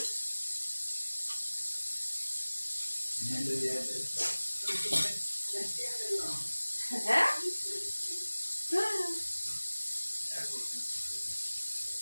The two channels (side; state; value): both; inverted; correlation -1.00